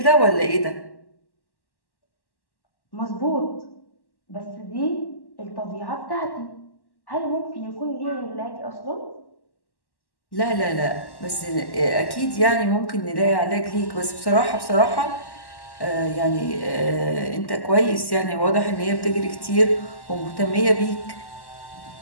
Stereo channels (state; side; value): late; right; 1.1 ms